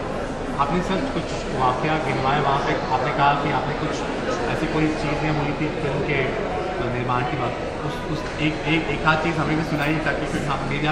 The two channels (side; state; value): both; identical; correlation 1.00